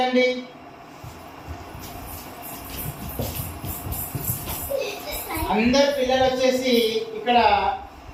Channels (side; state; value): both; identical; correlation 1.00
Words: అందరు పిల్లలు వచ్చేసి ఇక్కడ